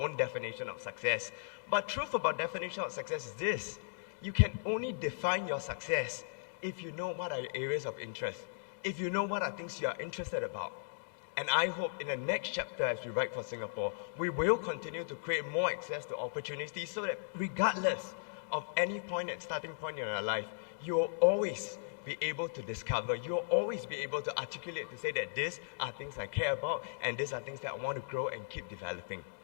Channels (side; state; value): right; silent; digital silence